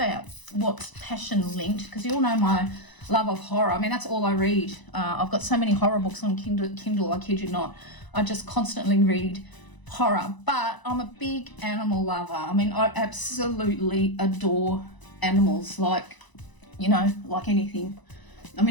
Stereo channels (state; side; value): late; right; 1.0 ms